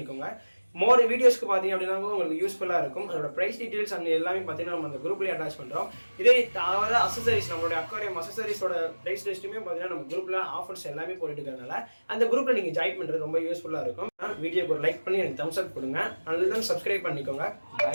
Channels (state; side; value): inverted; both; correlation -1.00